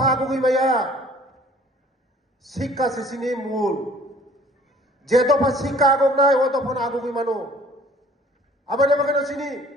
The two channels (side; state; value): both; normal; correlation 0.52